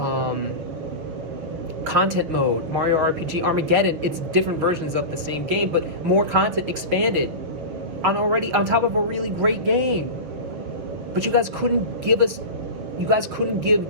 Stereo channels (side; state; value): left; late; 6.8 ms